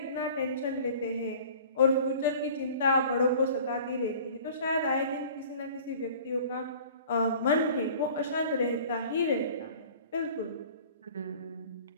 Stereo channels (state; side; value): inverted; both; correlation -0.46